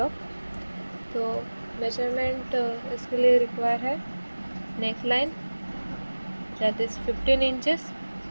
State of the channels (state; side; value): inverted; both; correlation -1.00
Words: तो मेजरमेंट इसके लिए रिक्वायर है neck line that is 15 inches,